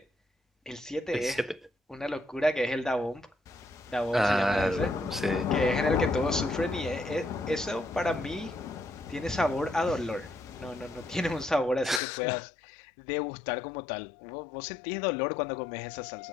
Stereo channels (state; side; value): drops out; right; at 12.0 s